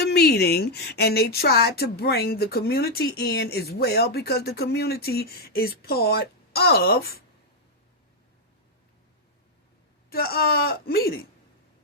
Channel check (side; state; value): both; normal; correlation 0.00